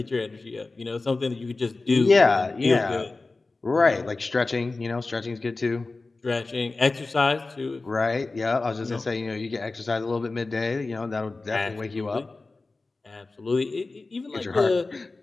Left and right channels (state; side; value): quieter; right; 3.5 dB